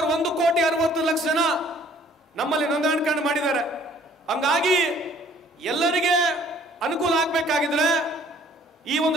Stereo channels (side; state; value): both; normal; correlation 0.57